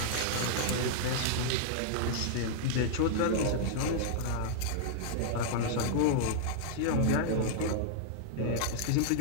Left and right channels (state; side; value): different; both; correlation -0.01